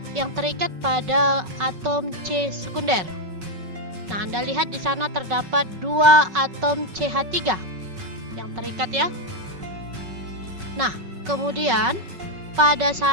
yang terikat pada atom C sekunder. Nah, Anda lihat di sana terdapat 2 atom CH3 yang terikat ya. Nah, kemudian pada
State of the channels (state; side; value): late; left; 5.3 ms